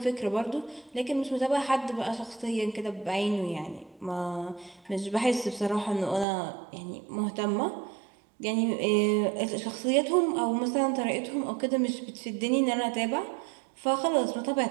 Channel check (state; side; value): drops out; left; at 6.2 s